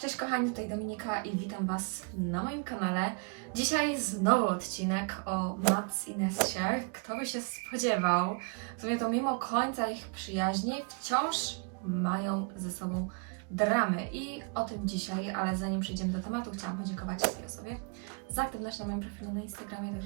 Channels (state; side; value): quieter; left; 36.5 dB